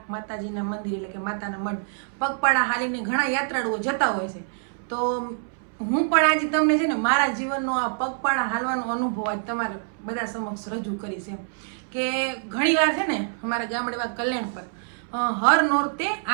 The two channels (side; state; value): left; silent; 61 dB below the other